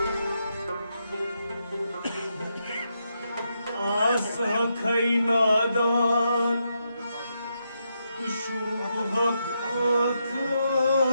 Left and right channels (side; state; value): both; inverted; correlation -0.82